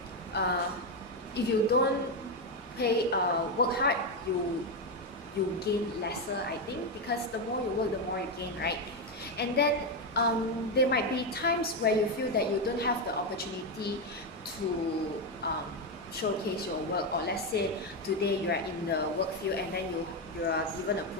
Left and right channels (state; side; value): normal; both; correlation 0.08